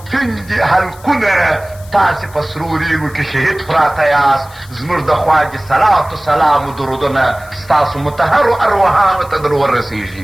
تندې حلقونه تاسې په سرو ریګو کې شهید پراته یاست زموږ د خوا دې صلات و سلام و درودونه ستاسو مطهرو ارواحانو ته در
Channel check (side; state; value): left; noise; hiss, 23 dB below the sound